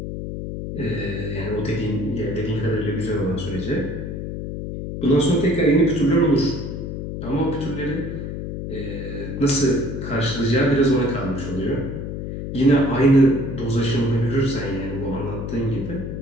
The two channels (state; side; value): noise; left; hum, 6 dB below the sound